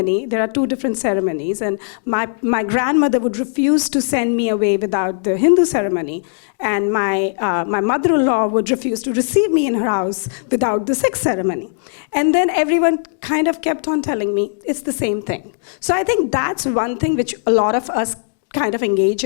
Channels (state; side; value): silent; right; digital silence